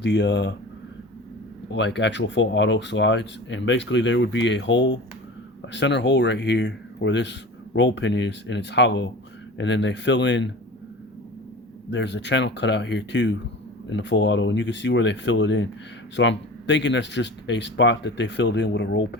the like actual full auto slides, and basically there would be a hole, a center hole right here where this roll pin is, and it's hollow, and then they fill in. There's a channel cut out here too in the full auto, and you can see where they fill it in. So I'm thinking that's just a spot that they filled in with a roll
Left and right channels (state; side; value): normal; both; correlation 0.36